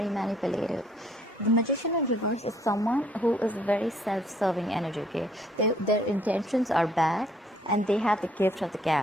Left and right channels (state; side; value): normal; both; correlation 0.64